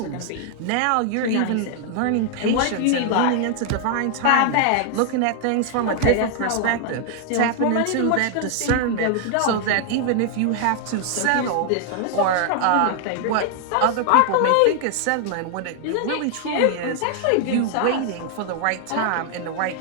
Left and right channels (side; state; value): both; different; correlation 0.00